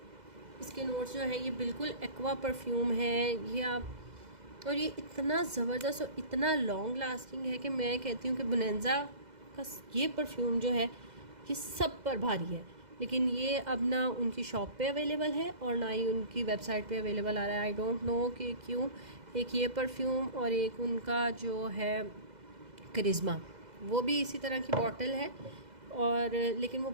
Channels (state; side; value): late; left; 2.0 ms